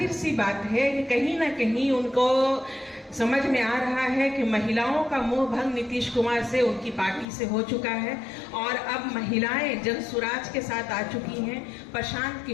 सी बात है कि कहीं ना कहीं उनको समझ में आ रहा है कि महिलाओं का मोह भंग नीतीश कुमार से, उनकी पार्टी से हो चुका है और अब महिलाएं जनसुराज के साथ आ चुकी हैं, प्रशांत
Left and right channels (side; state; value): right; drops out; at 7.2 s